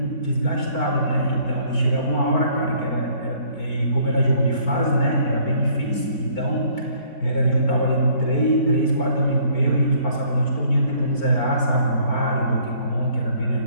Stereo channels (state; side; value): late; right; 4.4 ms